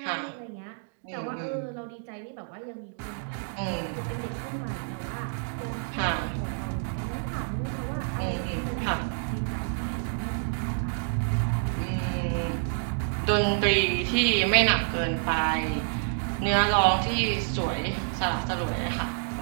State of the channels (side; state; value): left; silent; digital silence